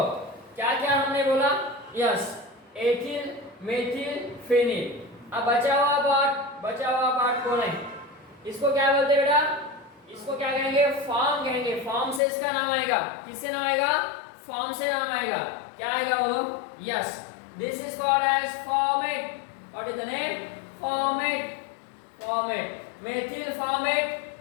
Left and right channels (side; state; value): right; drops out; at 12.2 s